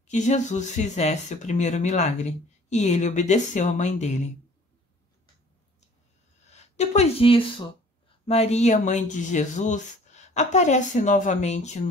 que Jesus fizesse o primeiro milagre. E ele obedeceu à mãe dele. Depois disso, Maria, mãe de Jesus, aparece novamente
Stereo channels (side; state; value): both; normal; correlation 0.52